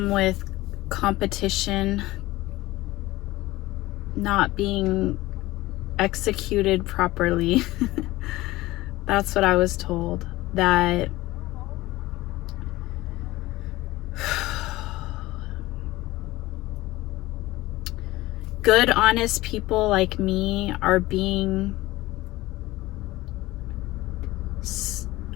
with competition not being executed properly. That's what I was told, that good, honest people like me are being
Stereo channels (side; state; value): right; quieter; 18.4 dB